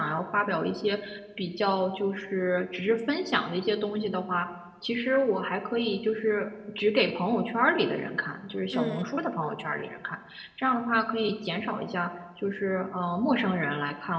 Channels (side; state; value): both; identical; correlation 1.00